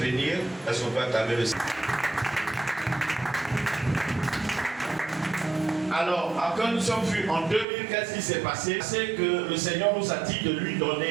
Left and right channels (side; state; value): left; drops out; at 7.7 s